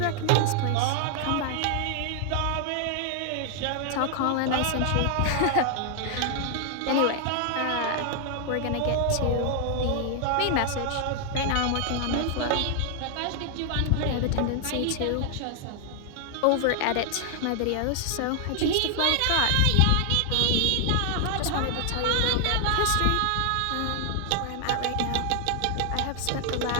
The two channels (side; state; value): both; different; correlation 0.00